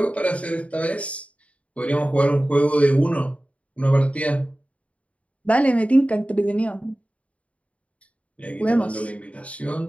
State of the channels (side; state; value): right; late; 0.065 ms